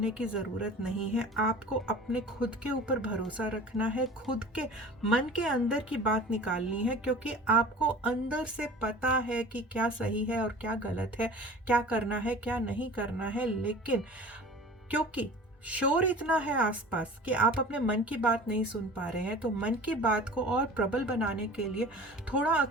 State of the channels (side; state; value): both; normal; correlation 0.40